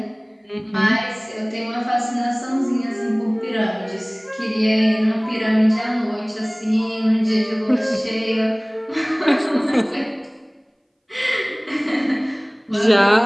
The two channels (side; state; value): both; identical; correlation 1.00